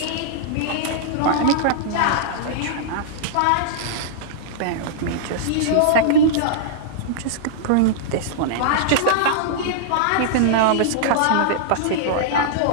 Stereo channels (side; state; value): both; different; correlation -0.02